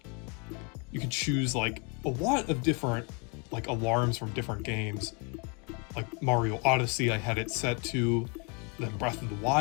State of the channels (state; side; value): quieter; right; 33.7 dB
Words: You could choose like a lot of different like alarms from different games. Like Mario Odyssey, I had it set to, then Breath of the